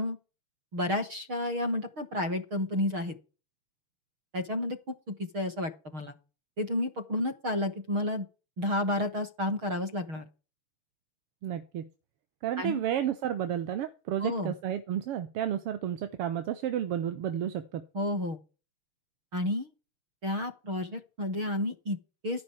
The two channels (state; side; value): late; left; 6.4 ms